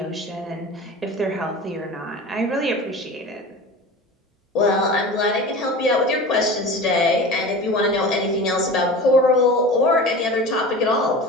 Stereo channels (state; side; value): normal; both; correlation 0.34